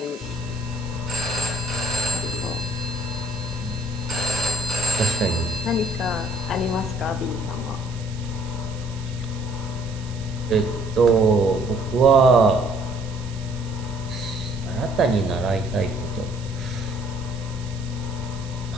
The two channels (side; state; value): right; noise; hiss, 18 dB below the sound